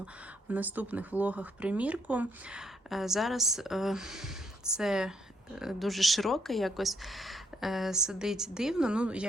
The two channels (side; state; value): both; normal; correlation 0.73